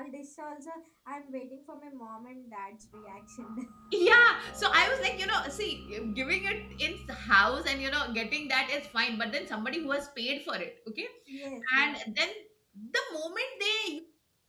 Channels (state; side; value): identical; both; correlation 1.00